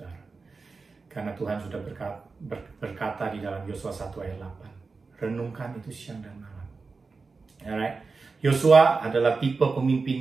Karena Tuhan sudah berkata di dalam Yosua 1 ayat 8, renungkan itu siang dan malam. Alright, Yosua adalah tipe pemimpin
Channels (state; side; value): quieter; left; 4.3 dB